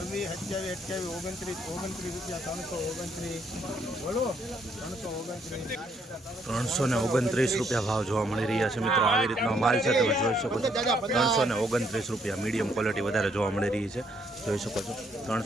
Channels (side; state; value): both; normal; correlation 0.71